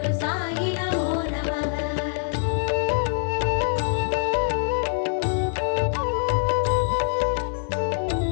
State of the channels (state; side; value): silent; right; digital silence